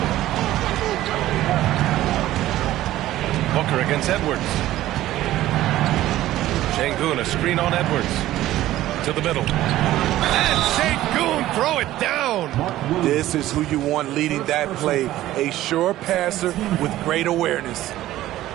Booker against Edwards. Şengün, a screen on Edwards. To the middle. And Şengün, throw it down. This is who you want leading that play. A sure passer with great awareness.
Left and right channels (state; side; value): quieter; left; 14.7 dB